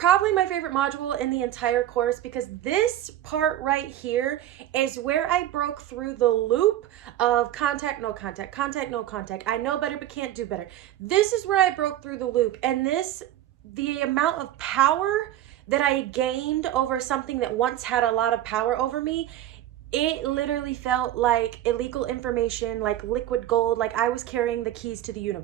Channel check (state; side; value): quieter; left; 12.9 dB